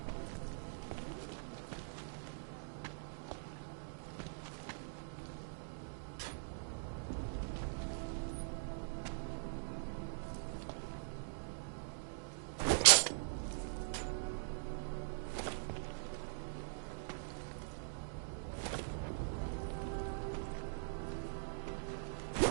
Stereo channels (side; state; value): left; silent; digital silence